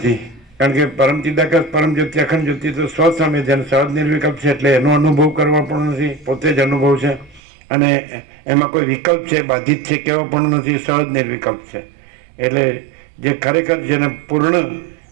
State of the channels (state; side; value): drops out; left; at 7.4 s